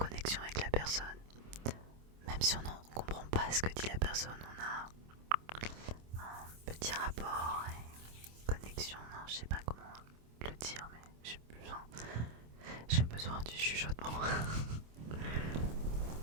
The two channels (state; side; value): late; left; 26 ms